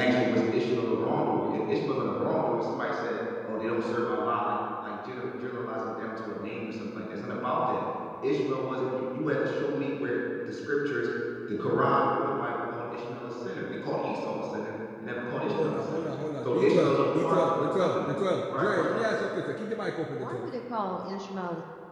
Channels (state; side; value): identical; both; correlation 1.00